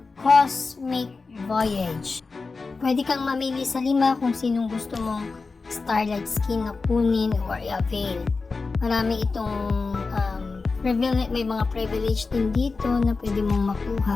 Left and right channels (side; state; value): right; quieter; 4.1 dB